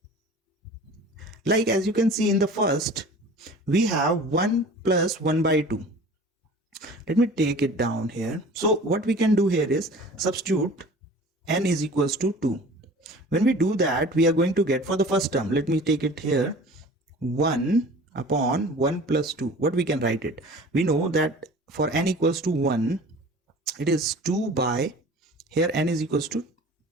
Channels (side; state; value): both; normal; correlation 0.43